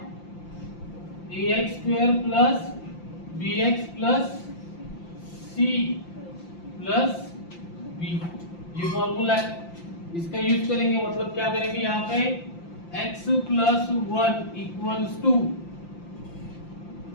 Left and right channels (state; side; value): late; right; 5.8 ms